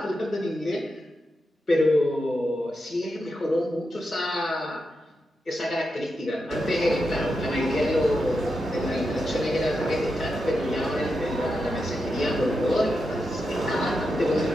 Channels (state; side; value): normal; both; correlation 0.87